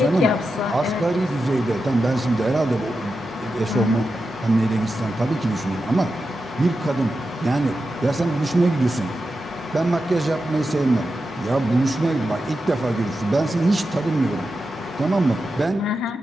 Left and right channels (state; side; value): normal; both; correlation 0.89